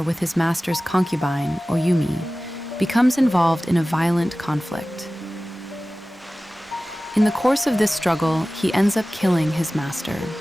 with his master's concubine, Oyumi, becomes involved in a violent conflict. In the course of this struggle, he ends up killing his master.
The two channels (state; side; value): normal; both; correlation 0.97